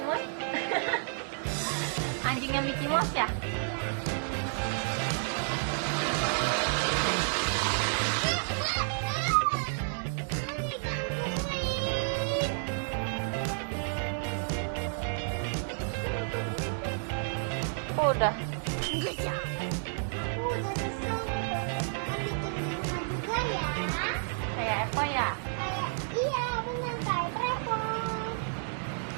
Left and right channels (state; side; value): silent; left; digital silence